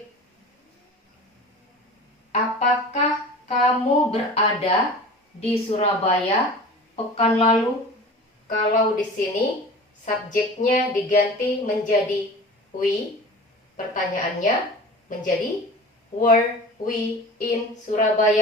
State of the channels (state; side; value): normal; both; correlation 0.38